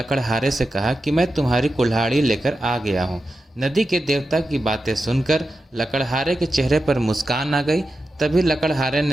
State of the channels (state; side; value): normal; both; correlation 0.90